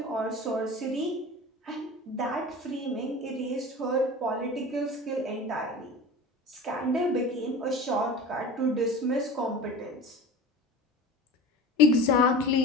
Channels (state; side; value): normal; both; correlation 0.35